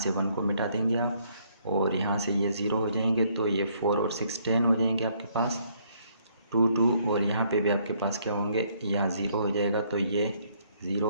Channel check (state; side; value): inverted; both; correlation -0.68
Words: 1 को मिटा देंगे आप, और यहाँ से ये 0 हो जाएंगे, तो ये 4 और 6 10 हो जाएंगे आपके पास, 2 2, और यहाँ पे भी आपके पास क्या होंगे, यहाँ 0 हो जाएगा, तो ये